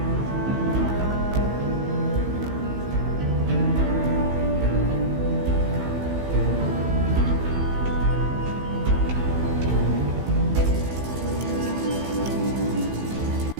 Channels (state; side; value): late; left; 16 ms